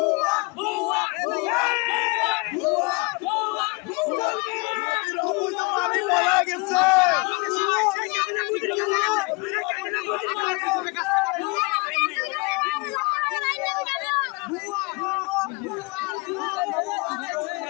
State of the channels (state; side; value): quieter; right; 29.6 dB